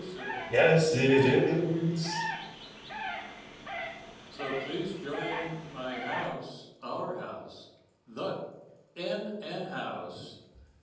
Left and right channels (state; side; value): identical; both; correlation 1.00